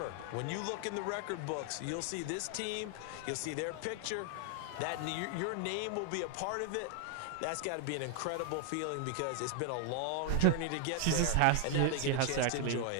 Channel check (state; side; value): different; both; correlation 0.00